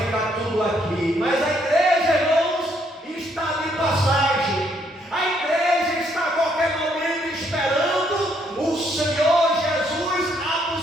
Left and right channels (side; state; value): both; normal; correlation 0.71